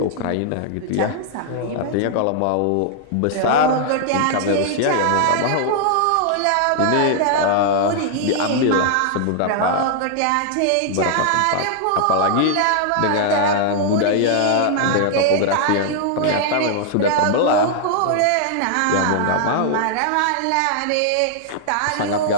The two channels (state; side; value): different; both; correlation -0.01